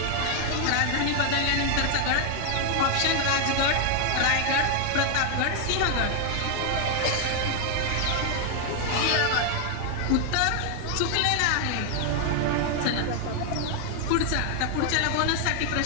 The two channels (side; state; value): both; different; correlation 0.00